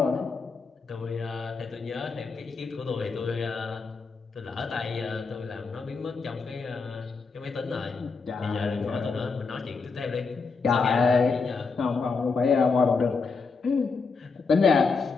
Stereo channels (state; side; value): quieter; right; 4.7 dB